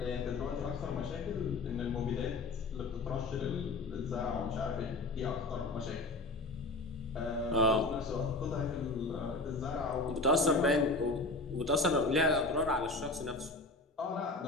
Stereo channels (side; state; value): right; quieter; 3.1 dB